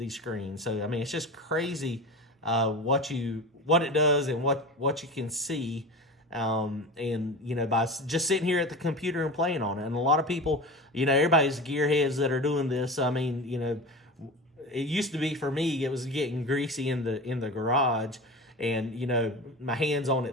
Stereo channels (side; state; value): both; normal; correlation 0.29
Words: screens. So, I mean, it's just crazy what it does and what you can see. And, you know, by just sitting here at the computer and playing on it. And a lot of people, you know, everybody's gearheads that are doing this. I mean, you know, it used to be for me, it was getting greasy in the garage, and, you know, my hands on